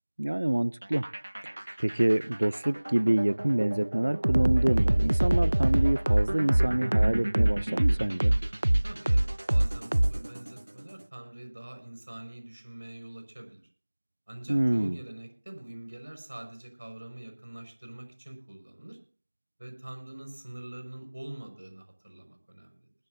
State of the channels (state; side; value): inverted; both; correlation -1.00